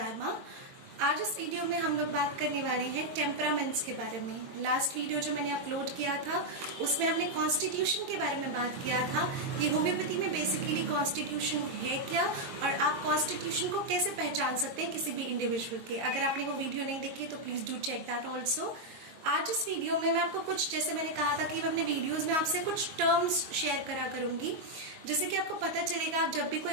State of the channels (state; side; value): late; left; 22 ms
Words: आज इस video में हम लोग बात करने वाले हैं टेम्परामेंट्स के बारे में। लास्ट वीडियो जो मैंने अपलोड किया था उसमें हमने कॉन्स्टिट्यूशन के बारे में बात किया था कि होम्योपैथी में बेसिकली कॉन्स्टिट्यूशन है क्या और आप कॉन्स्टिट्यूशन को कैसे पहचान सकते हैं किसी भी इंडिविजुअल के। अगर आपने वो वीडियो नहीं देखी तो please do check that also. आज इस वीडियो में मैं आपको कुछ, जैसे मैंने कहा था कि मैं अपने वीडियोस में आपसे कुछ टर्म्स शेयर करा करूंगी, जैसे कि आपको पता चलेगा, आप जब भी कोई